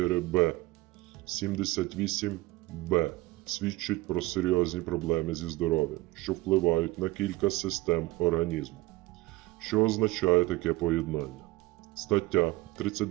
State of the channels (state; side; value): quieter; left; 19.7 dB